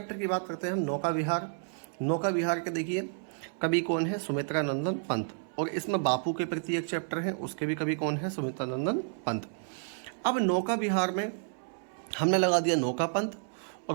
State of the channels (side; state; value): left; silent; 57 dB below the other